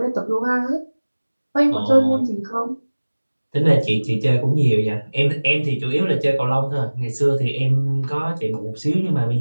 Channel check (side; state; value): both; inverted; correlation -1.00